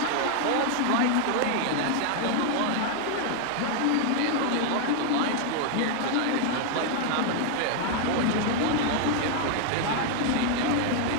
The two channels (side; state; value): both; different; correlation 0.00